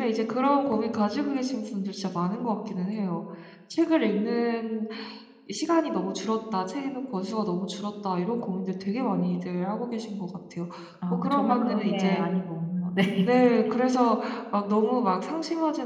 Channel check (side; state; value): both; identical; correlation 1.00